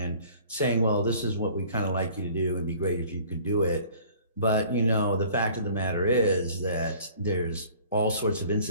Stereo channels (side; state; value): both; inverted; correlation -0.51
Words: saying, well, this is what we kind of like you to do and be great if you could do it. But, you know, the fact of the matter is that there's all sorts of